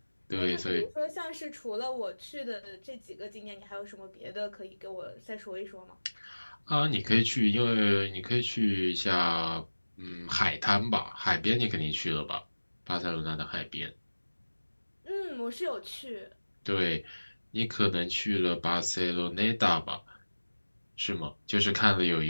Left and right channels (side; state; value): both; inverted; correlation -1.00